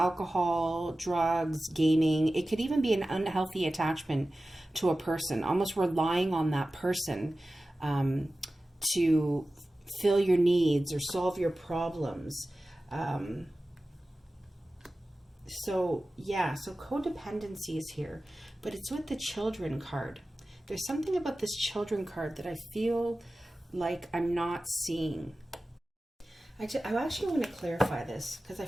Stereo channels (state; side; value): normal; both; correlation 0.95